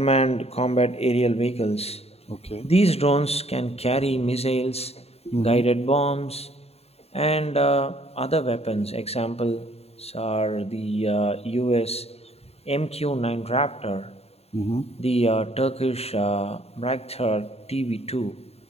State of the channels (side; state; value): right; late; 0.30 ms